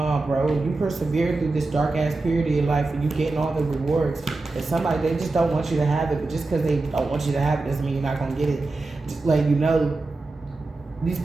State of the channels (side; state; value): left; quieter; 3.4 dB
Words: bro. You persevere through this dark ass period of your life and you getting all the rewards. And somebody, they just don't want you to have it, but just because they don't want you to have it doesn't mean you're not gonna get it. Just like, these